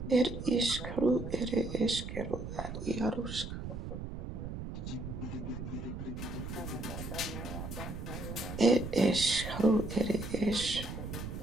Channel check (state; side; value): noise; right; rumble, 7 dB below the sound